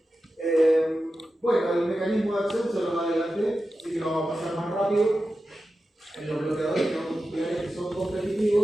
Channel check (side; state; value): both; normal; correlation 0.92